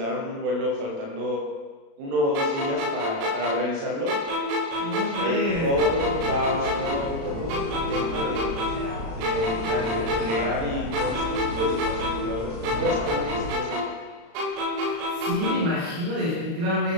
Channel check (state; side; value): late; left; 36 ms